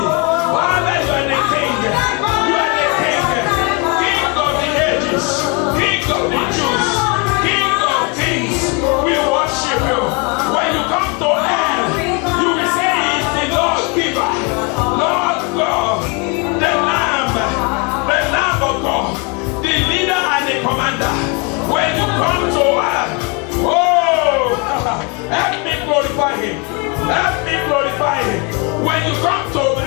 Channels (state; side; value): quieter; right; 32.0 dB